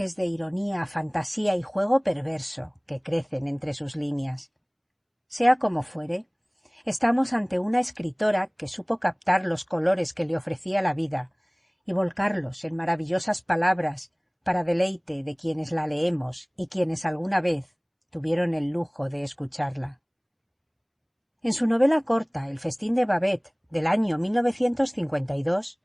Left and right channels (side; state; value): both; identical; correlation 1.00